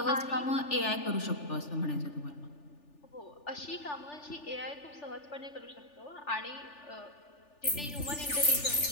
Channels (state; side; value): late; right; 3.4 ms